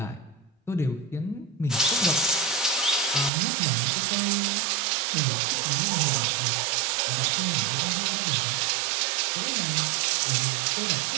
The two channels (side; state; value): left; drops out; at 3.3 s